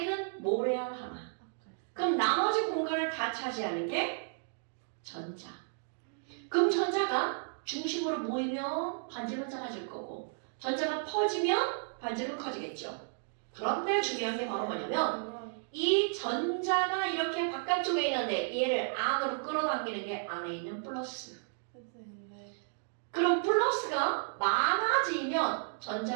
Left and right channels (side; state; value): left; silent; digital silence